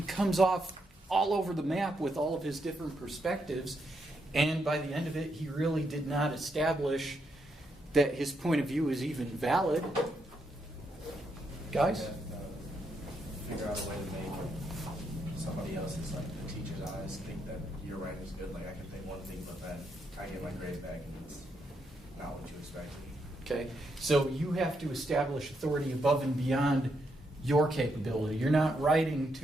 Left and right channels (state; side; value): normal; both; correlation 0.79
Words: comes off all over the map with all of his different perspectives, and by the end of it, he really did not establish that his point of view is even valid. Guys? Figure out a way to make somebody else's, like the teacher's eyes, think that your writing is good. Like I can think one thing, but then I get my grade back and it's not what you expected. Okay, so you have to establish authority above and beyond your capability. You're not writing